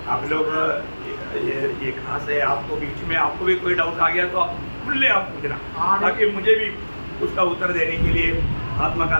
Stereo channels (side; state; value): both; inverted; correlation -1.00